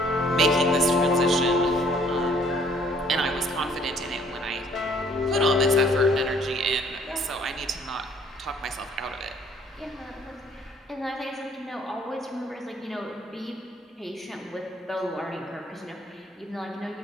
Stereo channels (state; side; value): normal; both; correlation 0.60